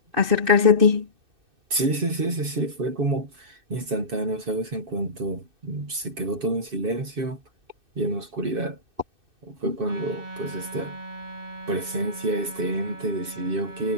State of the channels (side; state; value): left; late; 2.6 ms